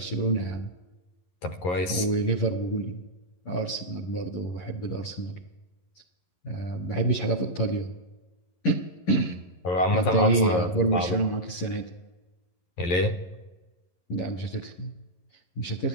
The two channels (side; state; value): right; late; 11 ms